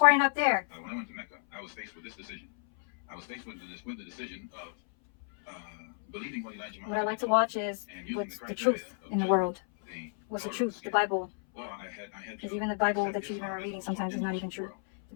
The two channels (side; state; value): right; silent; 56 dB below the other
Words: up there. When I went to Mecca, I was faced with this decision. I was faced with the decision of believing what Elijah Muhammad. What I like to watch is what's the truth in the world. What's the truth? The Bible. Because even the Bible that you even are reading sometimes is not even true.